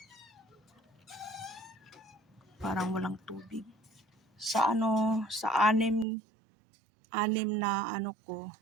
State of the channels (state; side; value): drops out; left; at 6.1 s